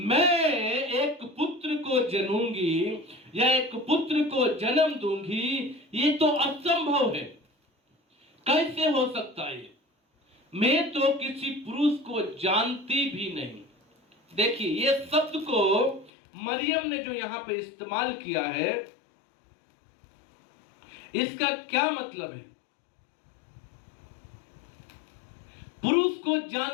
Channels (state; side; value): drops out; right; at 16.1 s